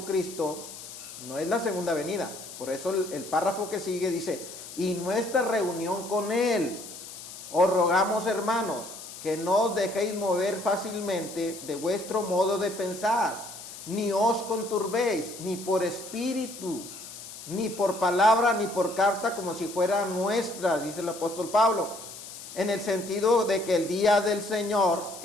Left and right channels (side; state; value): left; noise; hiss, 13 dB below the sound